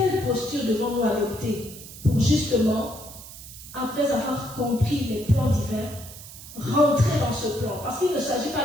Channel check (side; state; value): right; noise; hiss, 15 dB below the sound